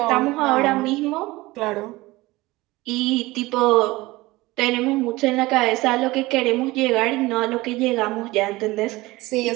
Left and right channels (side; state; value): left; quieter; 20.3 dB